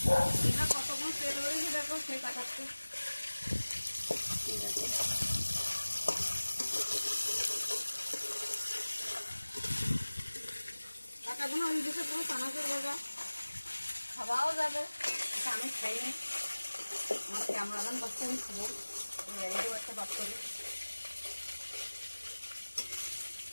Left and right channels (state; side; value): inverted; both; correlation -1.00